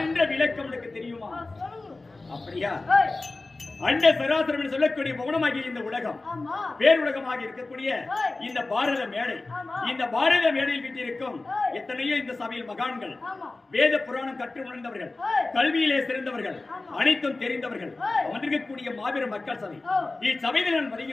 என்ற விளக்கம் உனக்கு தெரியுமா? அப்படியா? அண்ட சராசரம் என்று சொல்லக்கூடிய மௌனமாகிய இந்த உலகம் பேருலகமாக இருக்கக்கூடிய இந்த பாரத மேடை, இந்த பாரத மேடையில் வீட்டிருக்கும் எத்தனையோ இந்த சபையில் மகான்கள், வேத புராணம் கற்று உணர்ந்தவர்கள், கல்வியிலே சிறந்தவர்கள், அனைத்தும் தெரிந்தவர்கள் அமர்ந்திருக்கக்கூடிய மாபெரும் மக்கள் சபை. இச்சபையில் நான்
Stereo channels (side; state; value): right; quieter; 3.3 dB